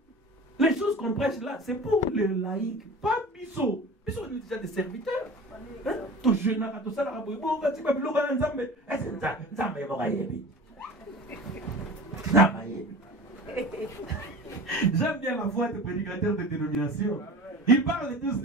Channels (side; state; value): both; normal; correlation 0.37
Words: Les choses qu'on prêche là, c'est pour les laïcs, pas Bissot. Bissot est déjà des serviteurs. Tout jeune, tout ça, j'aime bien la voix des prédicateurs de dénomination. Ils parlent tous